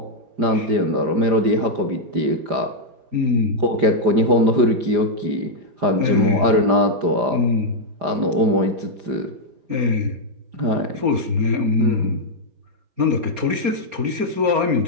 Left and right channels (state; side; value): late; left; 5.0 ms